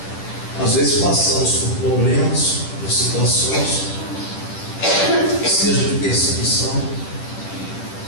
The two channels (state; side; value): late; right; 10 ms